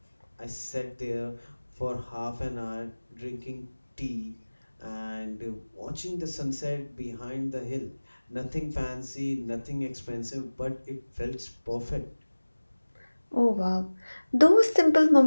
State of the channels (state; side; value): inverted; both; correlation -1.00